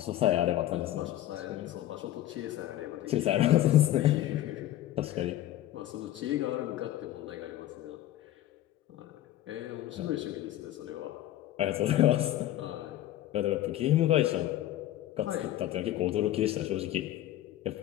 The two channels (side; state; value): right; quieter; 13.7 dB